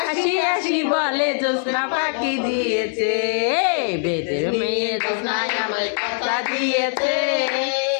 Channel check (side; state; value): right; silent; digital silence